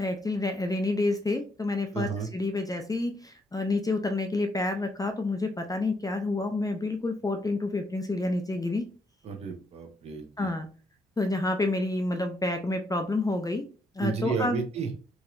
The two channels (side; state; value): both; normal; correlation 0.74